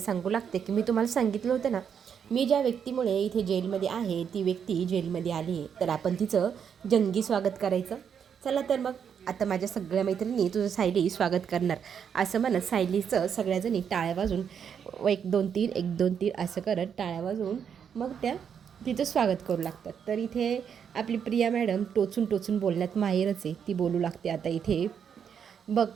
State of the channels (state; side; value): quieter; left; 7.6 dB